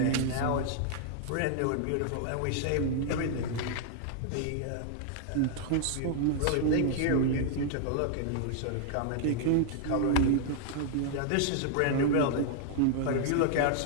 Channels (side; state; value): both; different; correlation -0.01